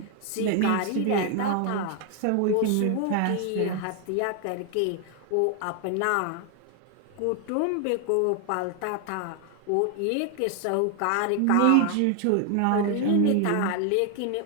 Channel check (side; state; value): both; different; correlation 0.00